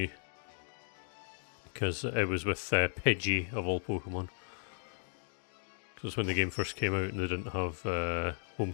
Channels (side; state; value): right; silent; digital silence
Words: Because it was with Pidgey, of all Pokemon. Because when the game first came out and they didn't have home